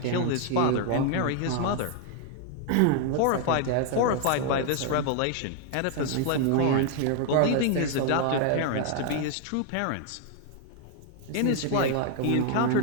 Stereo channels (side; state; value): both; different; correlation 0.00